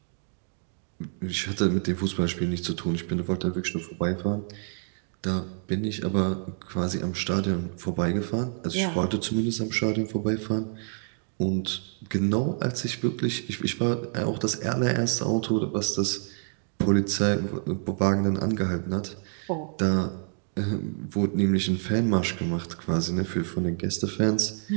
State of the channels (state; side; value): silent; left; 55 dB below the other